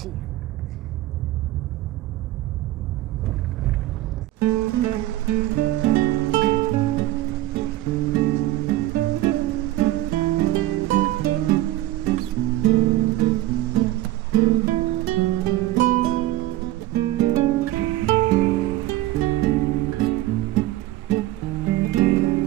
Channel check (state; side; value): quieter; left; 16.2 dB